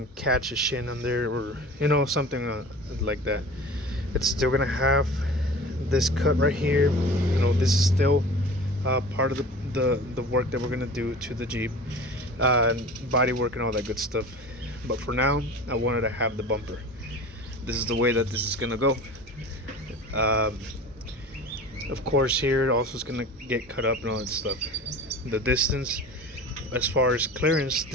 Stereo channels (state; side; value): normal; both; correlation 0.38